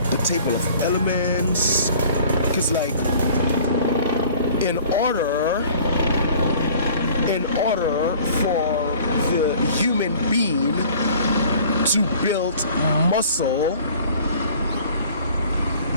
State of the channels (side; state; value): both; inverted; correlation -0.49